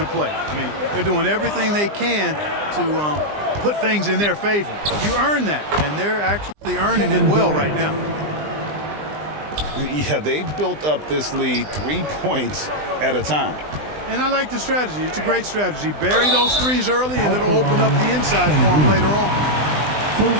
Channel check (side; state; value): left; late; 20 ms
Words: play. I mean, they're doing everything they can to put things in their favor. You earn that, and they're actually earning it well right now. Yeah, they've built up this lead 3 points at a time. And I like the strategy. It's a great strategy. Bury those threes early, and it'll open up the inside for them later on.